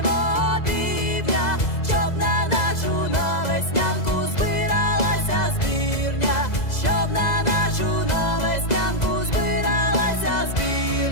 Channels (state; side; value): late; right; 2.0 ms